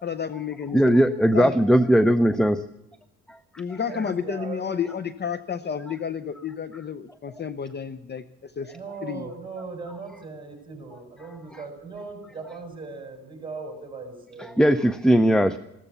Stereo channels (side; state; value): both; normal; correlation 0.85